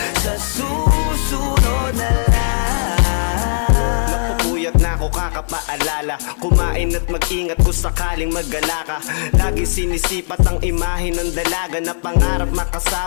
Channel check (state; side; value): silent; right; 68 dB below the other